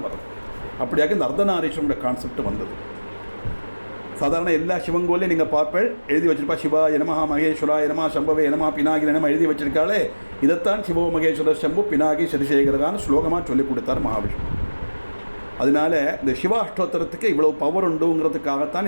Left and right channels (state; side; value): inverted; both; correlation -1.00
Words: வரும். அப்படியாக இந்த அர்த்தநாரீஸ்வரனுடைய கான்செப்ட் வந்தது. சாதாரண எல்லா சிவன் கோயிலையும் நீங்கள் பார்ப்பேன் எழுதி வச்சிருப்பா சிவாய நமஹ மகேஸ்வராய நமஹ சம்பவே நமஹ பினாகி நம எழுதி வச்சிருக்காளே. இதைத்தான் சிவோ மகேஸ்வரர் சம்பு பினாகி சதிசேகரகான்னு ஸ்லோகமாக சொல்லிக் கொடுத்தார் மகாவிஷ்ணு. அதனால இந்த சிவாஷ்டோத்திரத்துக்கு இவ்வளோ பவர்